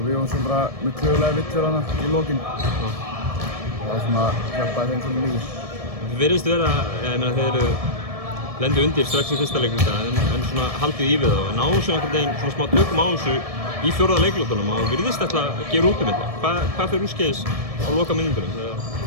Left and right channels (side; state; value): left; late; 1.7 ms